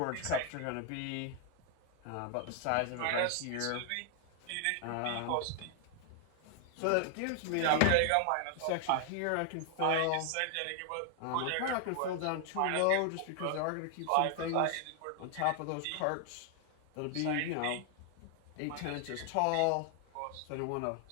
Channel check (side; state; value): both; different; correlation 0.00